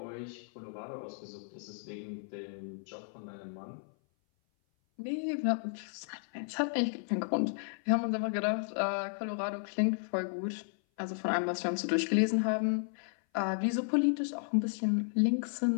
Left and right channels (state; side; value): silent; right; 55 dB below the other